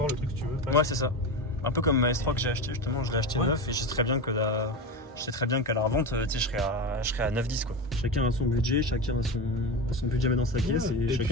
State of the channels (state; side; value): normal; both; correlation 0.21